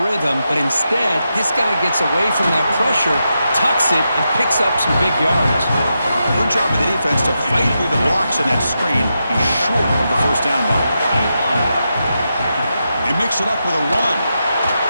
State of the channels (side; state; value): both; inverted; correlation -0.87